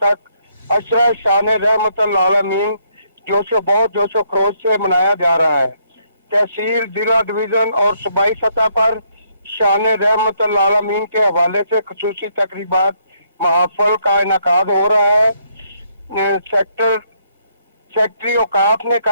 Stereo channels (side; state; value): both; inverted; correlation -0.72